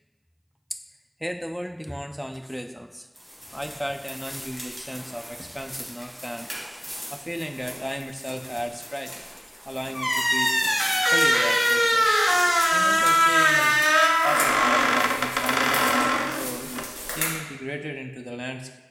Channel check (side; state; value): both; identical; correlation 1.00